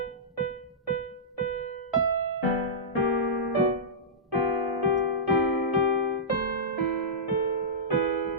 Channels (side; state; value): both; normal; correlation -0.16